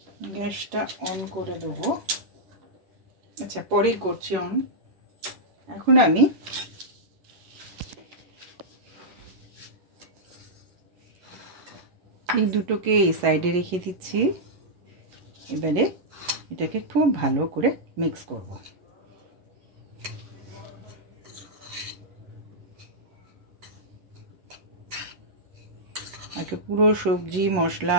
গ্যাসটা অন করে দেবো। আচ্ছা পরেই করছি অন। এখন আমি এই দুটোকে এই সাইডে রেখে দিচ্ছি। এবারে এটাকে খুব ভালো করে মিক্স করব। আগে পুরো সবজি মশলা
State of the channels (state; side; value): late; left; 11 ms